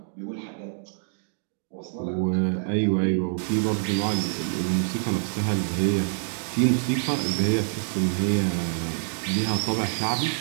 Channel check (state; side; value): silent; left; digital silence